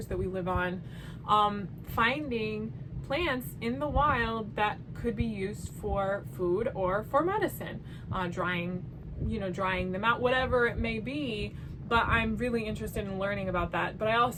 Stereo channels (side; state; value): both; identical; correlation 1.00